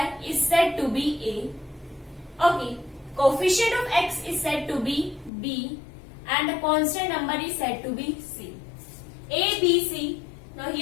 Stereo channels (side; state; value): right; drops out; at 5.3 s